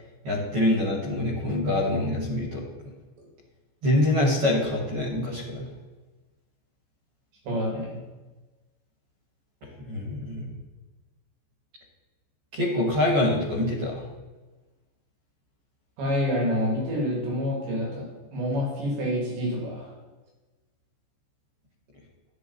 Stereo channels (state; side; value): late; left; 14 ms